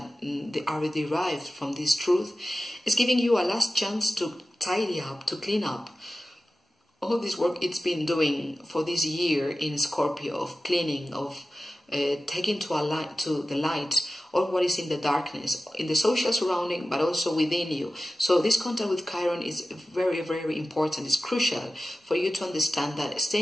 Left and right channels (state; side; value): normal; both; correlation 0.94